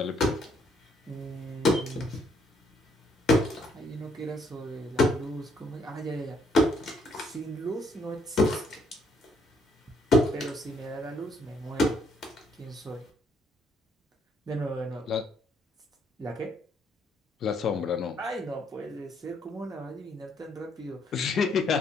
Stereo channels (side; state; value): both; normal; correlation 0.69